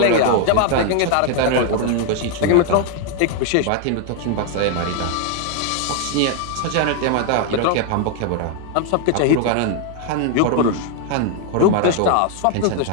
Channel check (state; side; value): different; both; correlation 0.00